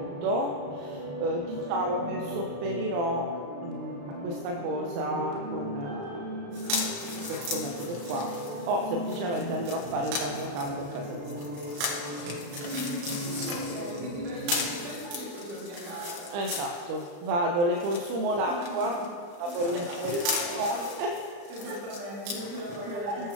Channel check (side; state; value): left; late; 35 ms